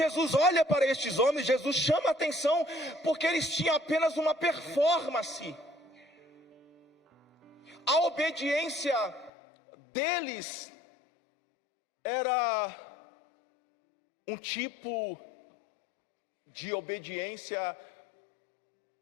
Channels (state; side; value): drops out; right; at 9.3 s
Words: olha para estes homens, Jesus chama a atenção porque eles tinham apenas uma performance. A obediência deles era um tipo de obediência